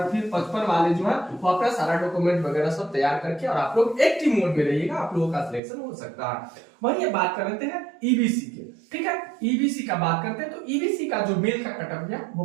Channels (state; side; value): drops out; left; at 5.6 s